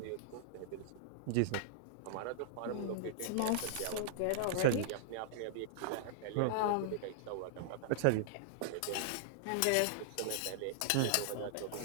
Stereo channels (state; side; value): different; both; correlation -0.01